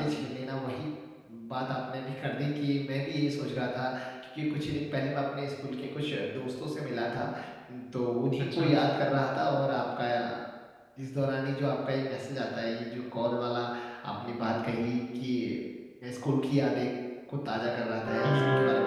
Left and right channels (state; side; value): identical; both; correlation 1.00